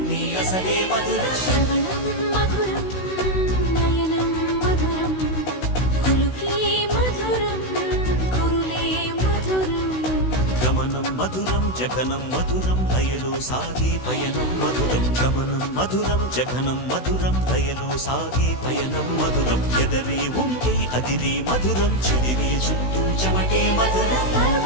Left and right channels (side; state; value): right; late; 16 ms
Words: అసలే మధురం శ్రవణం మధురం నయనం మధురం కులుకే మధురం కురులే మధురం గమనం మధురం జగనం మధురం లయలో సాగే పయనం మధురం గమనం మధురం జగనం మధురం లయలో సాగే పయనం మధురం ఎదరే ఉంటే అదిరే మధురం చెదిరే చుట్టూ చెమటే మధురం